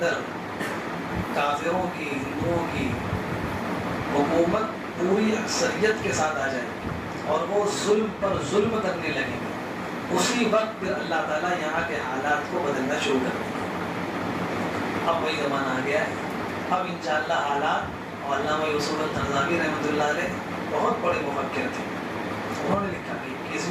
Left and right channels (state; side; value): identical; both; correlation 1.00